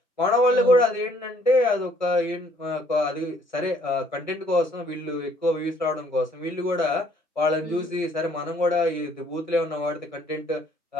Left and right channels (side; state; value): both; normal; correlation 0.62